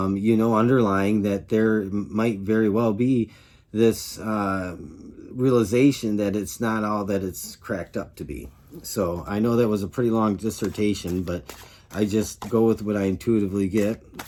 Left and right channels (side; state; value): both; identical; correlation 1.00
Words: know, underlying that there might very well be this realization that it's not all that it's cracked up to be. So I know that was a pretty long dissertation, but I just go with what I intuitively get.